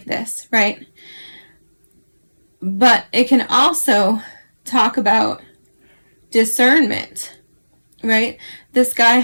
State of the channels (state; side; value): inverted; both; correlation -1.00